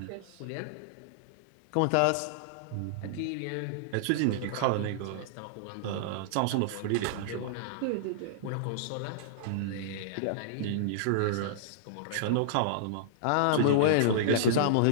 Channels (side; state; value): both; different; correlation -0.02